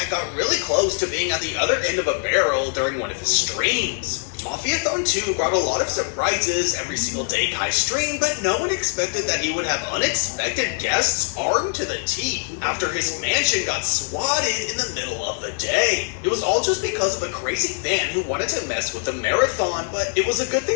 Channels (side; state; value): right; silent; 59 dB below the other